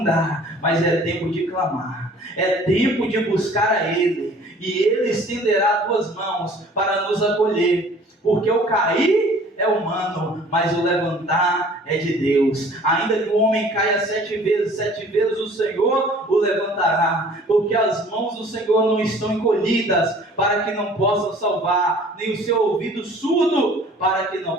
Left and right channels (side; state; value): both; normal; correlation 0.51